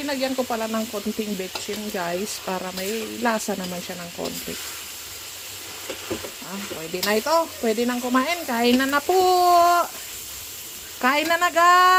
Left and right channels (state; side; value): identical; both; correlation 1.00